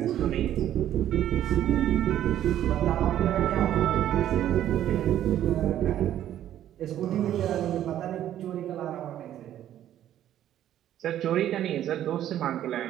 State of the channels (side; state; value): left; quieter; 11.6 dB